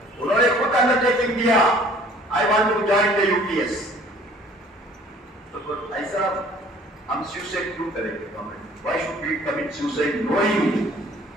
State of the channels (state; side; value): normal; both; correlation 0.53